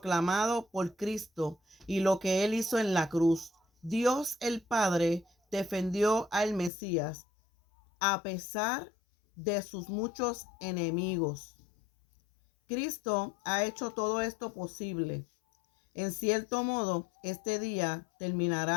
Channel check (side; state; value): right; drops out; at 6.7 s